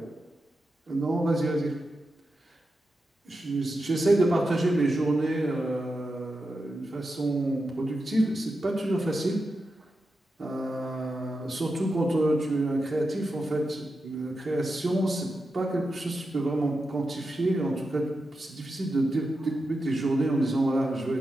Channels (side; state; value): both; normal; correlation 0.89